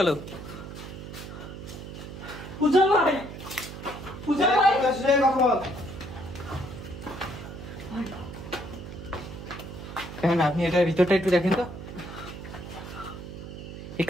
উজ্জ্বল ভাই, উজ্জ্বল ভাই কথা বল। কেন আপনি এটার ভিতরটা একটু দেখেন তো, এই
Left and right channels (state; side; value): noise; right; hum, 11 dB below the sound